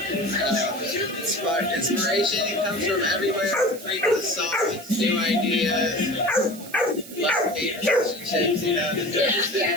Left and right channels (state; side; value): noise; right; hiss, 16 dB below the sound